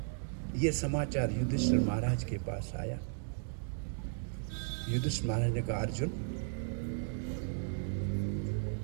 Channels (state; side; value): silent; left; digital silence